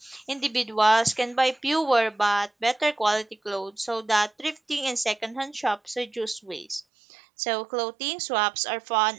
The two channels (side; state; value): left; drops out; at 6.9 s